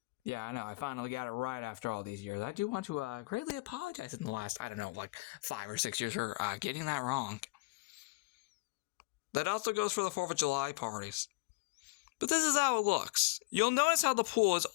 Yeah, I know, I finally got it right after all these years. I do want to greatly apologize in the last, 5 or 6 years for getting that wrong. That also goes for the 4th of July parties. But this is how it looks. You'll notice how the pool is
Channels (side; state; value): right; quieter; 25.2 dB